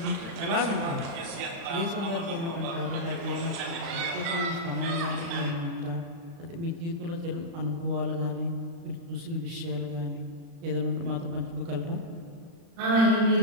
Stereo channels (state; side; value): late; left; 36 ms